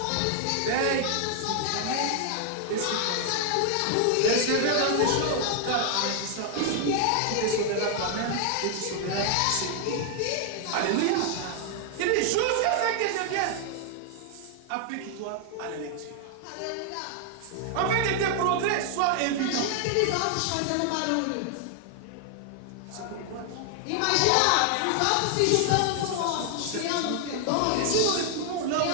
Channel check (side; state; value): both; different; correlation 0.00